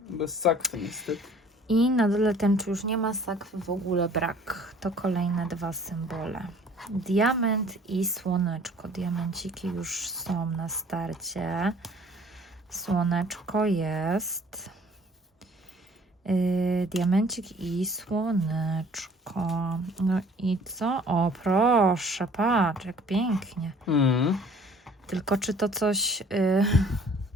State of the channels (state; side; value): normal; both; correlation 0.53